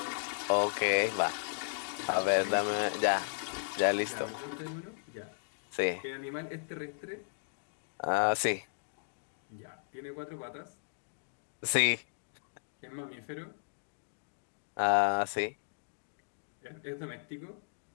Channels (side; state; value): right; silent; digital silence